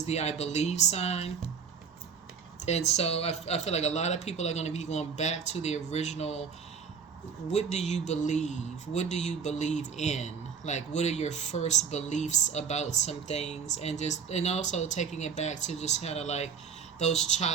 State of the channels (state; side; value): quieter; left; 6.4 dB